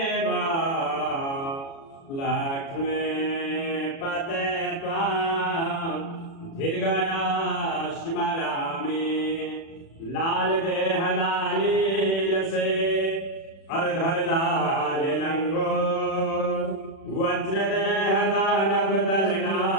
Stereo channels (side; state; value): right; late; 36 ms